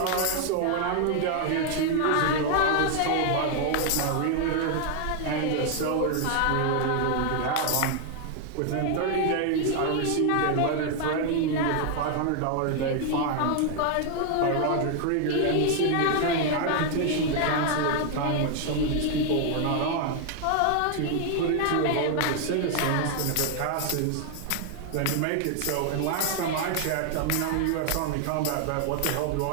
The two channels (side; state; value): both; different; correlation 0.00